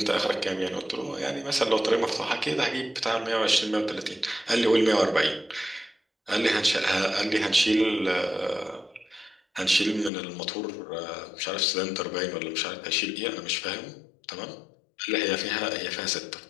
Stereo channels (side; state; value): right; drops out; at 10.1 s